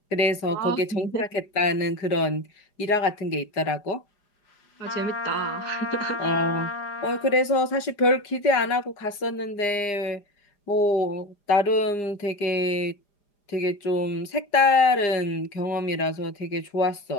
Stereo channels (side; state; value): right; late; 4.9 ms